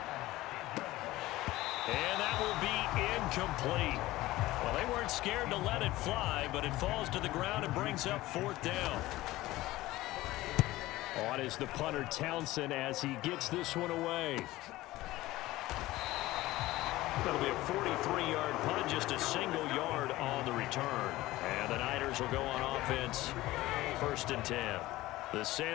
And that will be incomplete. Well, they weren't scared to let it fly, but it falls to the ground and brings up 4th down. On is the punter Townsend as he gets this one away. That'll be a 43-yard punt, just a single yard on the return. And the Niners will go on offense, 1st and 10. The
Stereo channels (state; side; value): quieter; right; 17.5 dB